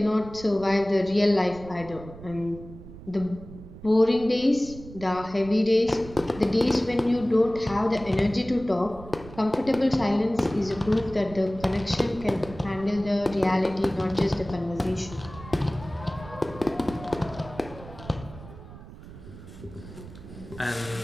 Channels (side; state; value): right; noise; rumble, 16 dB below the sound